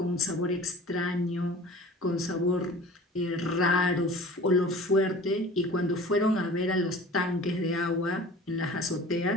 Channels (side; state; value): both; normal; correlation 0.43